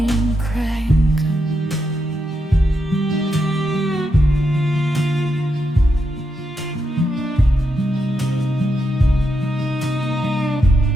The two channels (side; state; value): both; normal; correlation 0.83